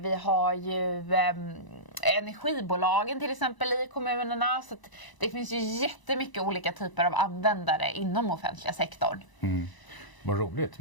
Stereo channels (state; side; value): late; right; 1.0 ms